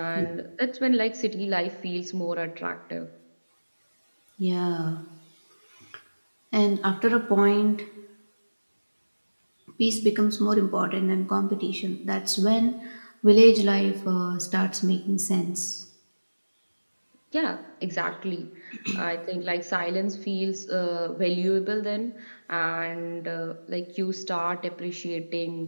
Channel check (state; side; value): inverted; both; correlation -1.00